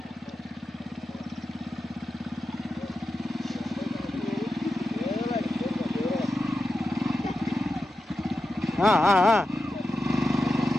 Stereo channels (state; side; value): normal; both; correlation 0.91